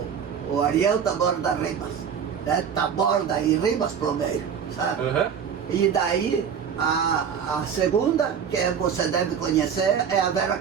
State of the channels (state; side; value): quieter; left; 7.5 dB